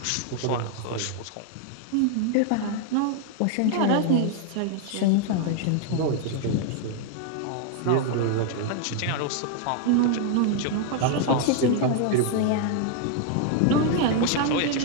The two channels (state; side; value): different; both; correlation 0.00